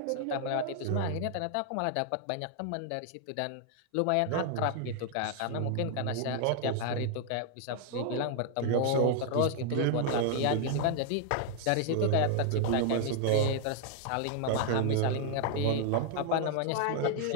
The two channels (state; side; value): different; both; correlation 0.00